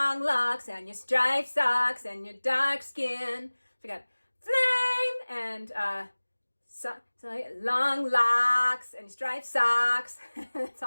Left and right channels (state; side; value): inverted; both; correlation -1.00